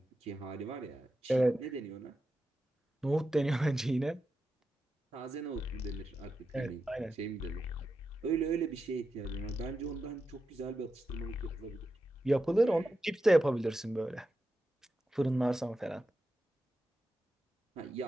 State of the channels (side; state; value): both; normal; correlation 0.89